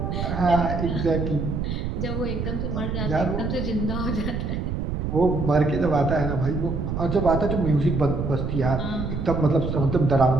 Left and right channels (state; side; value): noise; right; rumble, 3 dB below the sound